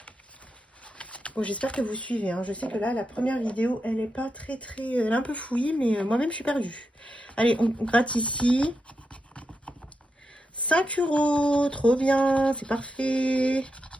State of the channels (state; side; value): normal; both; correlation 0.86